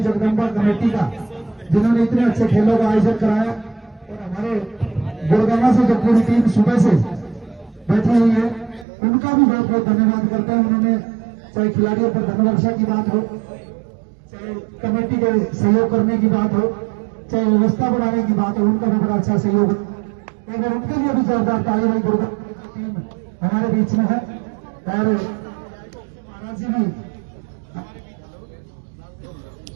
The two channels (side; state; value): left; drops out; at 8.8 s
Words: जगदम्बा कमेटी का, जिन्होंने इतने अच्छे खेलों का आयोजन कराया। और हमारे गुड़गांव से जो पूरी टीम सुबह से बैठी हुई है उनका भी बहुत बहुत धन्यवाद करते हैं। उन्होंने चाहे खिलाड़ियों पर धनवर्षा की बात हो, चाहे कमेटी के सहयोग करने की बात हो, चाहे व्यवस्था बढ़ाने की बात हो, उनका भी बड़ा अच्छा सहयोग है। अगर उनके लिए भी जोरदार ताली भाई गुड़गांव टीम हमारे बीच में है। और महाराज जी भी